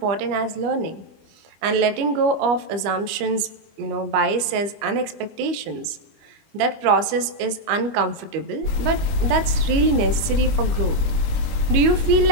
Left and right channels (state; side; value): late; left; 25 ms